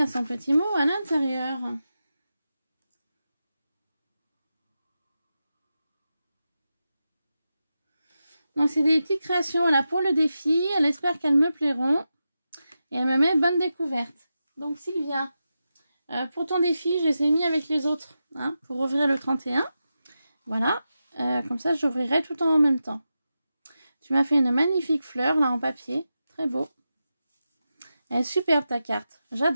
son petit mot à l'intérieur. Donc, c'est des petites créations là pour le défi. Elle espère qu'elles me plairont. Et elle me met bonne découverte. Donc, Sylvia, pour ton défi, je les ai mis avec les autres. Hein, pour ouvrir le 31. Voilà. Comme ça, j'ouvrirai tout en même temps. Tu m'as fait une magnifique fleur là en papier. Très beau. Elle est superbe ta carte.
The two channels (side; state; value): both; inverted; correlation -0.90